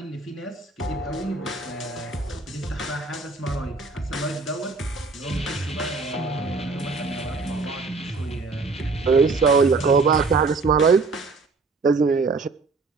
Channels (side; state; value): left; quieter; 4.0 dB